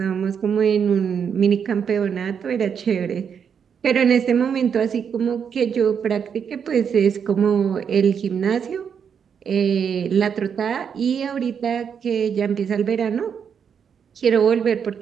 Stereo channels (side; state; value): left; quieter; 7.2 dB